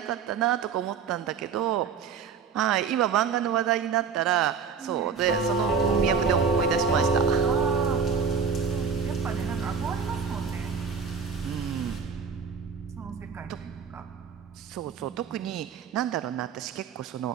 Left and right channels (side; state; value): left; quieter; 6.2 dB